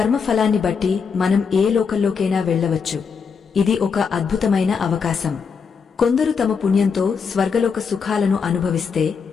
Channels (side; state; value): right; quieter; 5.9 dB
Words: బట్టి మనం ఏ లోకంలోకైనా వెళ్లవచ్చు. ఇది ఒక అద్భుతమైన అవకాశం. కొందరు తమ పుణ్యంతో స్వర్గలోక సుఖాలను అనుభవిస్తే